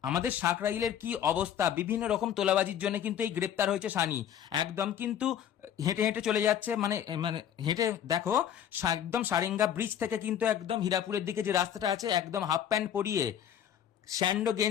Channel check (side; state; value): right; quieter; 9.7 dB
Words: আমাদের সাঁকরাইলের কি অবস্থা, বিভিন্ন রকম তোলাবাজির জন্য কিন্তু এই গ্রেপ্তার হয়েছে সানি। একদম কিন্তু হেঁটে হেঁটে চলে যাচ্ছে, মানে মানে হেঁটে দেখো একদম সারেঙ্গা ব্রিজ থেকে কিন্তু একদম হীরাপুরের দিকে যে রাস্তাটা আছে, একদম হাফ প্যান্ট পরিয়ে স্যান্ডো